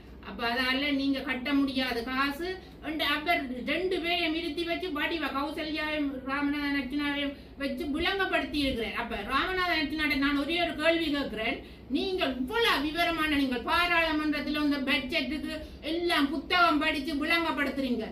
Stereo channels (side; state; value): both; identical; correlation 1.00